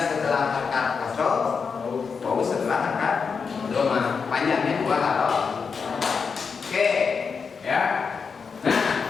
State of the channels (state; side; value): quieter; right; 5.6 dB